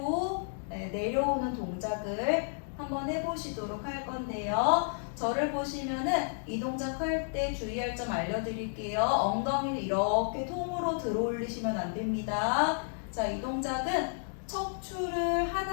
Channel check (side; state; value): right; silent; digital silence